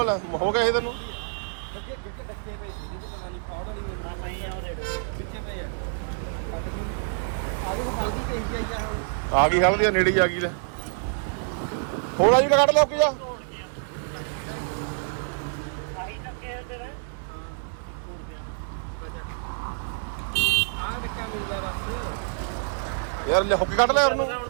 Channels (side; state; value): left; silent; digital silence